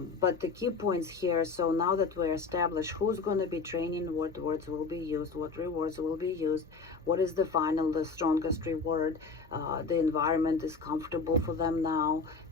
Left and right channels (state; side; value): quieter; right; 4.5 dB